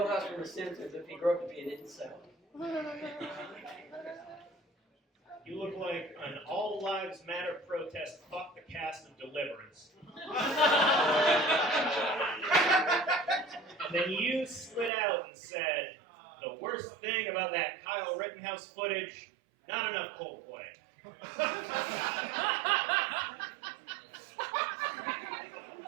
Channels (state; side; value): drops out; left; at 14.9 s